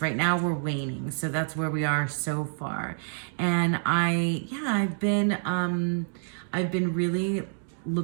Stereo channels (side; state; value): left; silent; digital silence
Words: now we're waning, so that's where we are so far. And I've been really